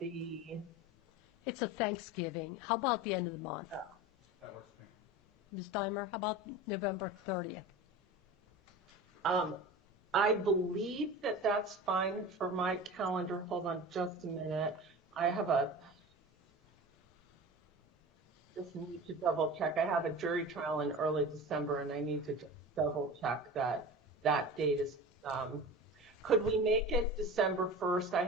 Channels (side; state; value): both; normal; correlation 0.33